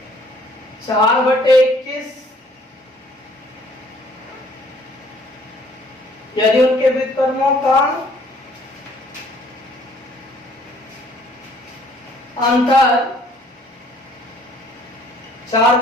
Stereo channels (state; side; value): normal; both; correlation 0.59